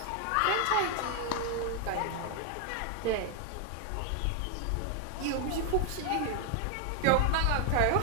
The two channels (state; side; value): different; both; correlation 0.00